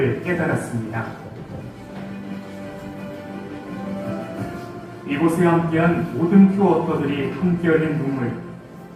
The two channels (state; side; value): identical; both; correlation 1.00